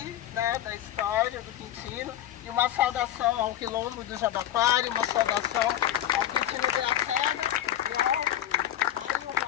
né, da história do Quintino, e uma saudação ao quilombo do Jabaquara, uma saudação ao Quintino Graciano e ao Mário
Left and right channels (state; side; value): quieter; right; 12.0 dB